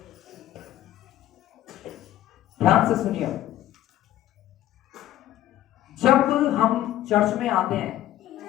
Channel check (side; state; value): right; quieter; 13.2 dB